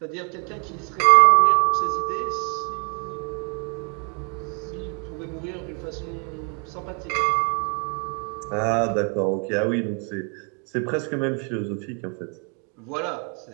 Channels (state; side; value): quieter; left; 38.0 dB